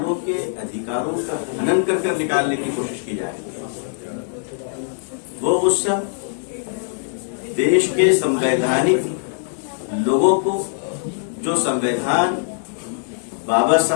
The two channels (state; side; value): silent; right; digital silence